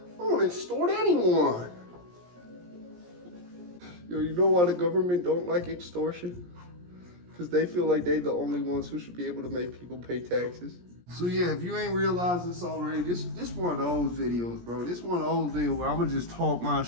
I don't extort anyone. Yo, you know why the government don't like extortion? Because they feel like they the only ones who should be able to make people pay taxes. So yeah, if you ain't realized this already, this one of those videos, bro. This one of those videos where I'm gonna just talk my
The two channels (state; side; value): late; left; 17 ms